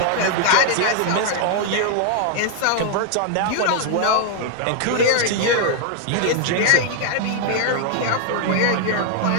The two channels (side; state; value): both; different; correlation 0.00